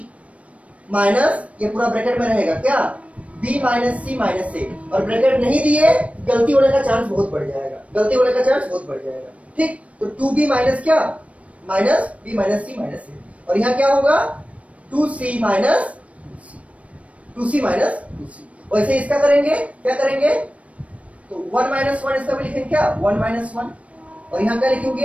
माइनस, ये पूरा ब्रैकेट में रहेगा क्या, B minus C minus A, और ब्रैकेट नहीं दिए गलती होने का चांस बहुत बढ़ जाएगा, गलती होने का चांस बहुत बढ़ जाएगा, ठीक। तो 2B माइनस क्या, minus B minus C minus A, और यहाँ क्या होगा 2C minus 2C minus 2C। वैसे इसका करेंगे, क्या करेंगे, तो 1 माइनस 1 इसका भी लिखेंगे क्या 1 माइनस 1, और यहाँ क्या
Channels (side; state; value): left; late; 0.064 ms